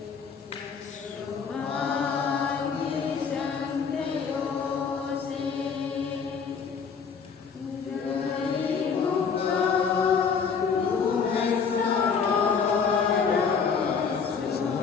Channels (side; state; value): right; quieter; 6.0 dB